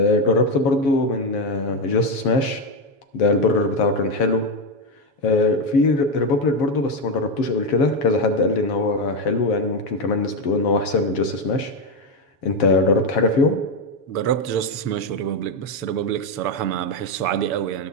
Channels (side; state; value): right; late; 7.2 ms